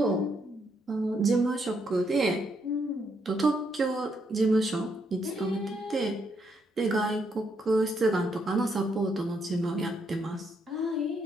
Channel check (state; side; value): normal; both; correlation 0.76